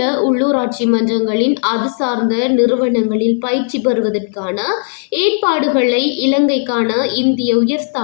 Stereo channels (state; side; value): silent; right; 57 dB below the other